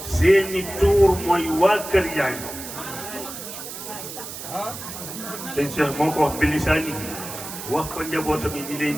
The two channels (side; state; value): right; noise; hiss, 10 dB below the sound